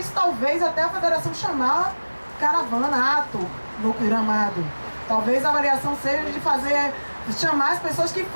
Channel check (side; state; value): both; inverted; correlation -1.00